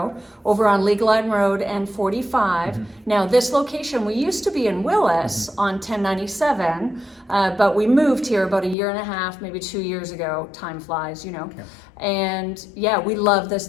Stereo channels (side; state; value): right; drops out; at 8.8 s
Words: over on League Line Road and 45. Now this location, we used to be in Willis on 1097, but we moved here about a year and a half, maybe 2 years ago. Time flies, you know. Okay. And yeah, we love